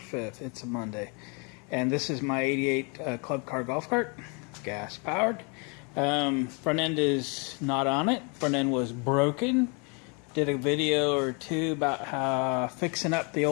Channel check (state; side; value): quieter; right; 33.6 dB